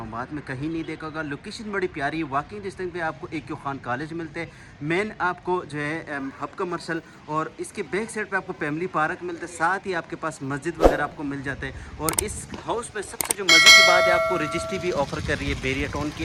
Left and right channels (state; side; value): identical; both; correlation 1.00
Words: में कहीं नहीं देखा होगा। लोकेशन बड़ी प्यारी है। वॉकिंग डिस्टेंस पे आपको AQ खान कॉलेज मिलते हैं, मेन आपको जो है हब कमर्शल, और इसके बैक साइड पे आपको फैमिली पार्क मिलता है। साथ ही आपके पास मस्जिद वगैरह आपको मिल जाते हैं। और इस हाउस में सबसे जो मज़े की बात है, आपको रजिस्ट्री भी ऑफर कर रही है, बेरिया टाउन की